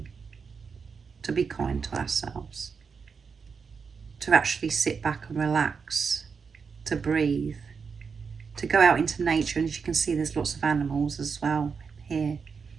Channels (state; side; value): quieter; left; 5.7 dB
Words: to be kind to ourselves, to actually sit back and relax, to breathe, to go out into nature. And as you can see, there's lots of animals as well here